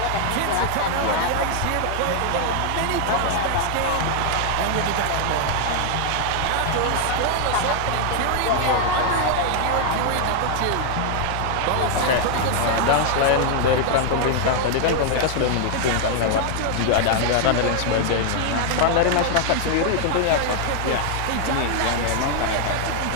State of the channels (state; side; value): different; both; correlation 0.00